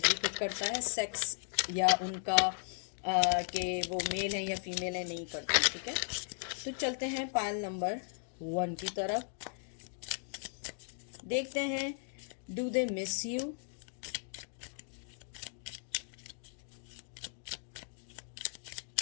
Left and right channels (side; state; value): right; silent; digital silence